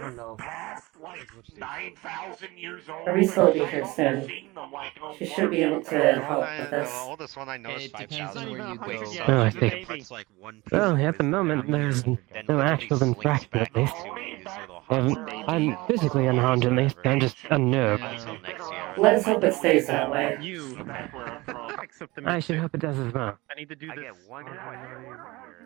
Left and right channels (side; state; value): left; quieter; 21.8 dB